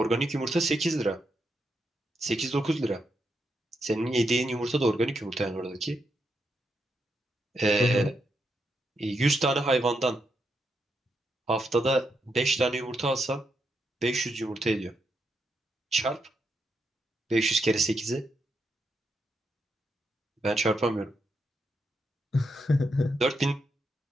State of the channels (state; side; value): normal; both; correlation 0.82